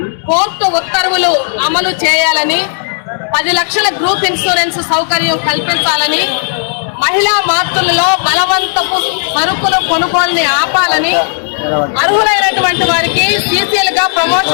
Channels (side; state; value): right; silent; digital silence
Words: కోర్టు ఉత్తర్వులు అమలు చేయాలని, 10 లక్షల గ్రూప్ ఇన్సూరెన్స్ సౌకర్యం కల్పించాలని, మహిళా మార్పులలో బలవంతపు సరుకులు కొనుగోలుని ఆపాలని, అర్హులైనటువంటి వారికి సీసీఎల్ గా